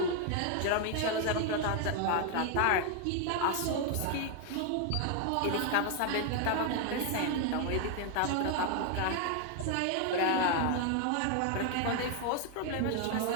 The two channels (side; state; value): both; different; correlation 0.00